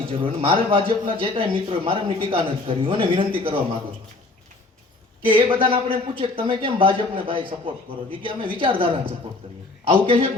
જરૂર. અને મારે ભાજપના જે કાંઈ મિત્રો મારે એમની ટીકા નથી કરવી, અને વિનંતી કરવા માંગુ છું કે એ બધાને આપણે પૂછે કે તમે કેમ ભાજપને ભાઈ સપોર્ટ કરો છો, કે અમે વિચારધારાને સપોર્ટ કરીએ. આવું કહે છે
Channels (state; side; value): quieter; right; 3.3 dB